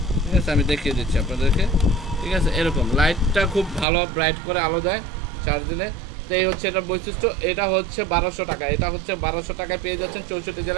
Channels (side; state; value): left; drops out; at 3.9 s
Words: ঠিক আছে, আমি দেখিয়ে দিচ্ছি আপনাদেরকে, ঠিক আছে। এরকম লাইটটা খুব ভালো ব্রাইট করে আলো দেয় চার্জ দিলে। তো এই হচ্ছে এটার বৈশিষ্ট্য। এটা হচ্ছে 1200 টাকা, এটা হচ্ছে 1200 টাকায় পেয়ে যাচ্ছেন 64